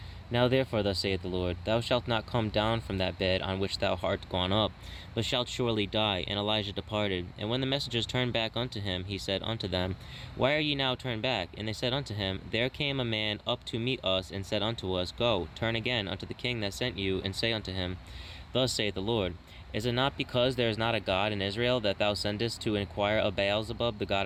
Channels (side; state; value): both; identical; correlation 1.00